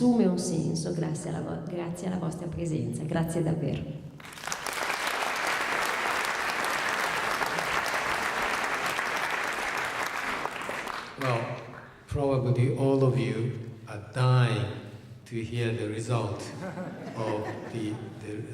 un senso grazie alla vostra presenza, grazie davvero. Well, probably all of you are dying to hear the result of these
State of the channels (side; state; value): both; identical; correlation 1.00